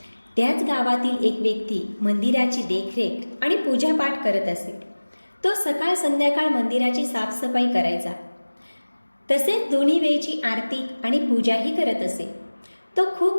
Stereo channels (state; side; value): inverted; both; correlation -1.00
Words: त्याच गावातील एक व्यक्ती मंदिराची देखरेख आणि पूजापाठ करत असे. तो सकाळ संध्याकाळ मंदिराची साफसफाई करायचा. तसेच दोन्ही वेळची आरती आणि पूजाही करत असे. तो